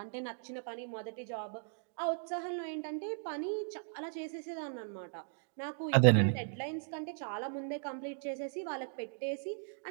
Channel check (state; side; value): silent; left; digital silence